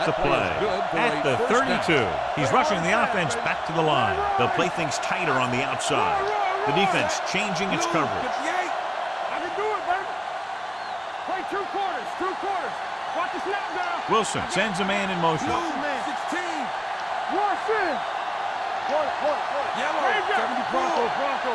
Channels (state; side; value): identical; both; correlation 1.00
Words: the play at the 32. He's rushing the offense back to the line. They'll play things tighter on the outside. The defense changing its coverage. I can do it, baby. Play 2 quarters. Watch the snap down. Wilson sends a man in motion. 16. Wash in. Yellow, 74. Bronco.